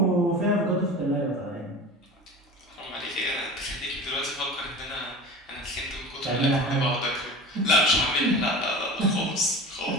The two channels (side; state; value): both; normal; correlation 0.34